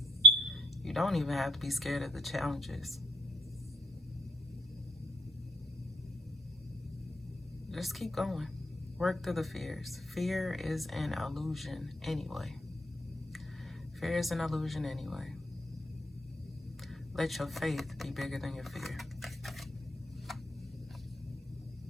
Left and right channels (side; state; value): both; normal; correlation 0.64